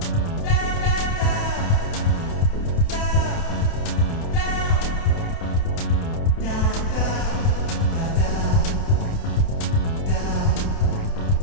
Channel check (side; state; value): right; late; 29 ms